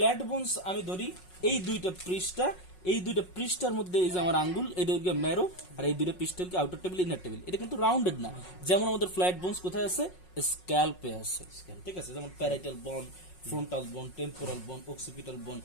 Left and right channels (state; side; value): late; right; 5.5 ms